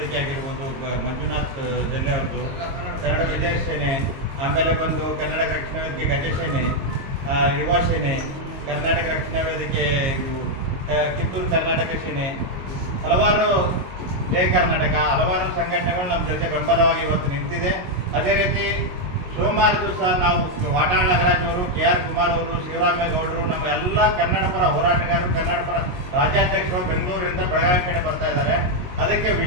ಆಗಿರ್ಬೋದು, ಮಂಜುನಾಥ್ ಜಲ್ಲೆ ಅವ್ರದ್ದು ಕನ್ನಡ ವಿಜಯ ಸೇನೆ, ಆಮೇಲೆ ಬಂದು ಕರ್ನಾಟಕ ರಕ್ಷಣಾ ವೇದಿಕೆ ಗಜಸೇನೆ, ಯುವ ಸೇನೆ, ಕರ್ನಾಟಕ ರಕ್ಷಣಾ ವೇದಿಕೆ ಕಿತ್ತೂರು ಕರ್ನಾಟಕ ಸೇನೆ, ಹಲವಾರು ಜಯ ಕರ್ನಾಟಕ, ಹಲವಾರು ಸಂಘಟನೆಗಳು ನಮ್ಮ ಜೊತೆ ಬೆಂಬಲವಾಗಿ ಇವತ್ತು ನಿಂತಿದೆ. ಅದೇ ರೀತಿ ಸೋಮವಾರ ದಿವಸ ನಾವು ವಾಟಾಳ್ ನಾಗರಾಜ್ ಅವರು, KR ಕುಮಾರ್ ಅವರು, ಶಿವರಾಮೇಗೌಡರು, ನಮ್ಮ ಎಲ್ಲ ಕನ್ನಡ ಪರ ಹೋರಾಟಗಾರರು, ಕನ್ನಡ ಪರ ರಾಜ್ಯಾಧ್ಯಕ್ಷರು ಬೆಂಗಳೂರಿಂದ ಬೆಳಗಾವಿ ಕಡೆ ಬರ್ತಾ ಇದ್ದಾರೆ. ಅದಕ್ಕೆ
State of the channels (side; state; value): left; late; 22 ms